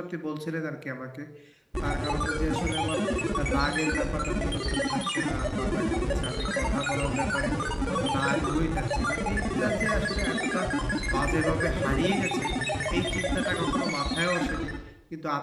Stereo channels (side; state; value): both; identical; correlation 1.00